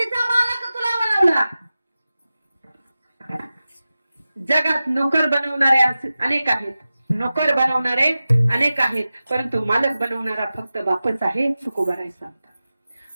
मालक तुला बनवला. जगात नोकर बनवणारे अनेक आहेत, नोकर बनवणारे अनेक आहेत, परंतु मालक बनवणारा फक्त बापच आहे. तुकोबराय सांगतात,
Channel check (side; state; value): both; inverted; correlation -0.95